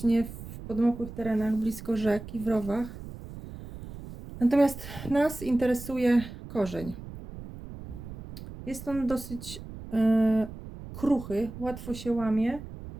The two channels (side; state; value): right; noise; rumble, 12 dB below the sound